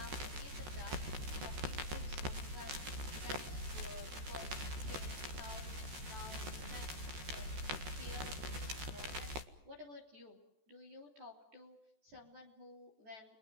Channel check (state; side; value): late; left; 14 ms